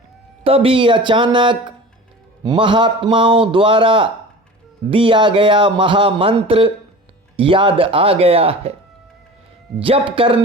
तभी अचानक महात्माओं द्वारा दिया गया महामंत्र याद आ गया है। जप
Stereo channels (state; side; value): normal; both; correlation 0.37